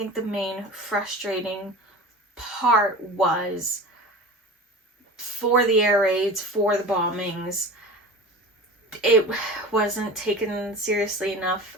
the main frustrating part was for the air raids, for the bombings. It wasn't taken seriously enough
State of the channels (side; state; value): both; normal; correlation 0.35